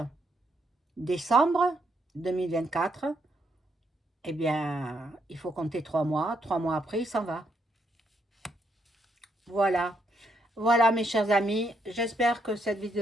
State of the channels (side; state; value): both; normal; correlation 0.75